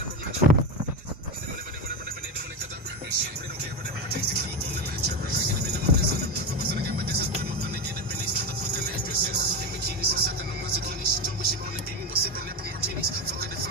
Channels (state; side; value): normal; both; correlation 0.17